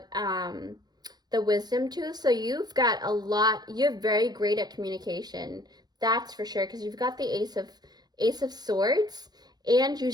the wisdom tooth. So you've got a lot, you're very great at communication. That's for sure, because you've got the Ace of Swords, and you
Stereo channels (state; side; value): late; left; 0.19 ms